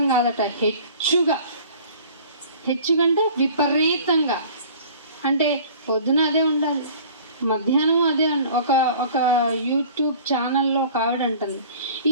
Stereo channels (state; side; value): inverted; both; correlation -0.47